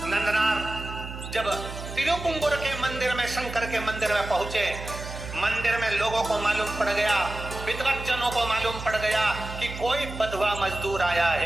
नंदनार जब तिरुपुंगुर के मंदिर में, शंकर के मंदिर में पहुंचे, मंदिर में लोगों को मालूम पड़ गया, विद्वज्जनों को मालूम पड़ गया कि कोई बधवा मजदूर आया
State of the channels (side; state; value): right; noise; hum, 10 dB below the sound